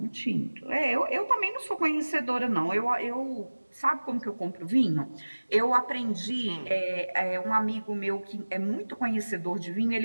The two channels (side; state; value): both; inverted; correlation -1.00